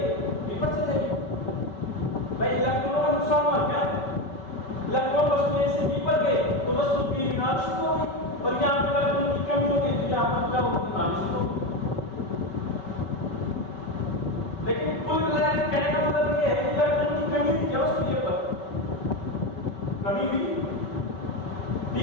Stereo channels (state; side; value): late; right; 5.3 ms